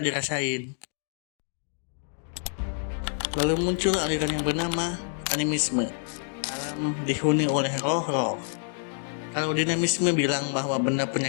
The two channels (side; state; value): right; silent; 60 dB below the other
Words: Lalu muncul aliran yang bernama animisme. Alam dihuni oleh roh-roh. Kalau dinamisme bilang bahwa benda